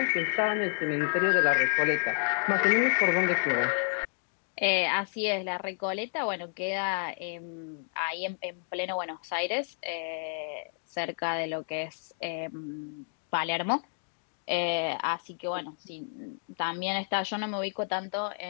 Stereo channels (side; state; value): right; silent; digital silence